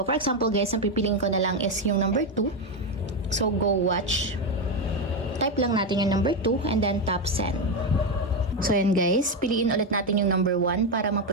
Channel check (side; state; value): both; normal; correlation 0.09